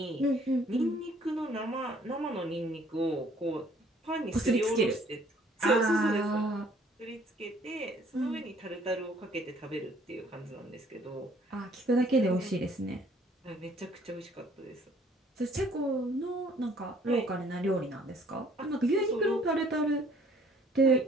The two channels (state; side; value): normal; both; correlation 0.59